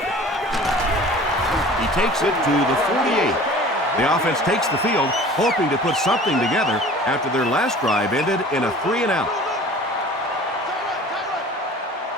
He takes it to the 48. The offense takes the field, hoping to put something together after their last drive ended in a 3-and-out.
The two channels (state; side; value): normal; both; correlation 0.44